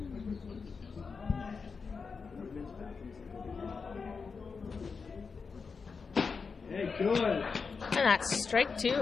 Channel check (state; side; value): quieter; right; 5.1 dB